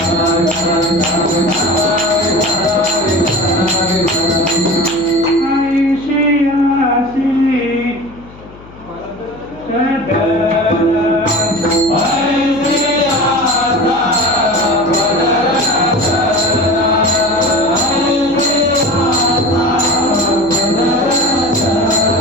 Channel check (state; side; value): noise; left; hum, 21 dB below the sound